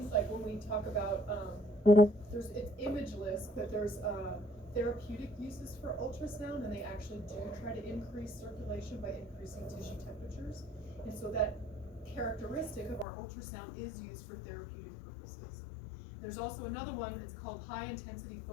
like when we talk about, it's imageless, but there's therapeutic uses for ultrasound, and they actually do try to increase circulation by increasing tissue temperatures. And so that characteristic of our ultrasound is used for therapeutic purposes. There's also another one, it's called high intensity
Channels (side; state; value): right; drops out; at 13.1 s